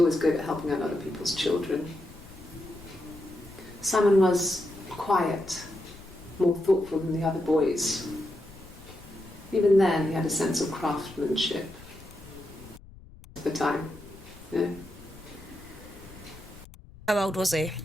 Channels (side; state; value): left; noise; rumble, 20 dB below the sound